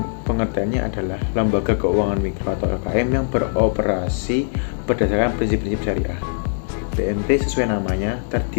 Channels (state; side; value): silent; right; digital silence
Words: pengertiannya adalah lembaga keuangan mikro atau LKM yang beroperasi berdasarkan prinsip-prinsip syariah. BMT sesuai namanya